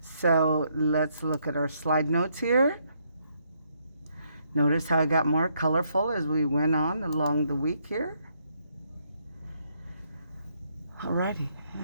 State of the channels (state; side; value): inverted; both; correlation -0.74